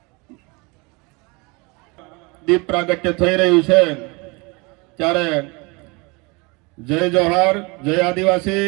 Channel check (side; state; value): left; quieter; 27.7 dB